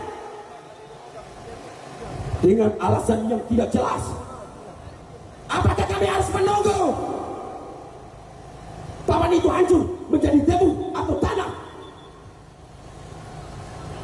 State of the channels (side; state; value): both; identical; correlation 1.00